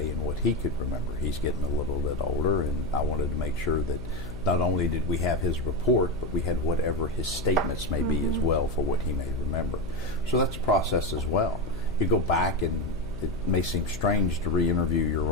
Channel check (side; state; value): left; noise; hum, 11 dB below the sound